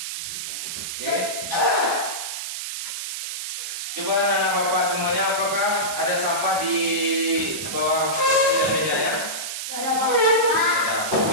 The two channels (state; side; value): noise; right; hiss, 5 dB below the sound